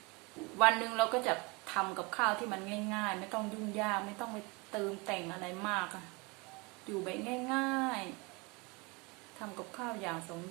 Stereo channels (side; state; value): left; quieter; 27.9 dB